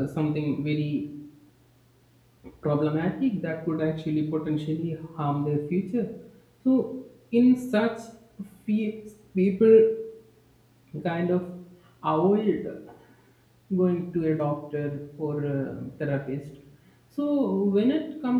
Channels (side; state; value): both; identical; correlation 1.00